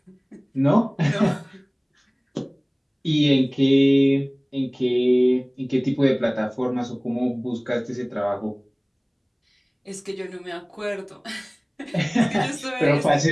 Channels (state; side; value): identical; both; correlation 1.00